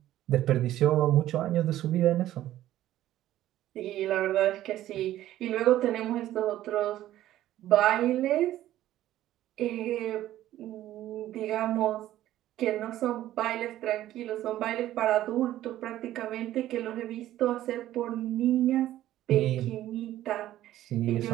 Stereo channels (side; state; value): left; quieter; 13.6 dB